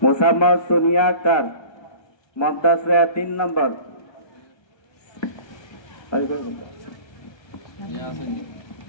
মুসাম্মদ সোনিয়া আক্তার মমতাজ 3 নম্বর।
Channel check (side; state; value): right; late; 1.3 ms